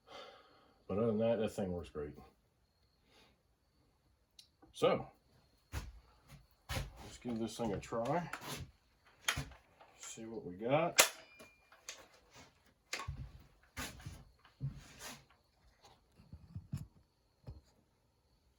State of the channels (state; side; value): identical; both; correlation 1.00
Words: But other than that, that thing works great. So, let's give this thing a try. See what we got.